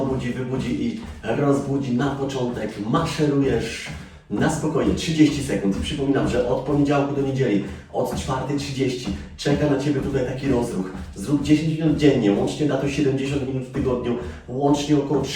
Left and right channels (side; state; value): both; identical; correlation 1.00